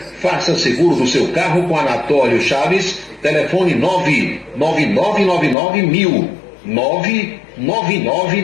Faça seguro do seu carro com Anatólio Chaves. Telefone 99999.000.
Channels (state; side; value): drops out; right; at 5.6 s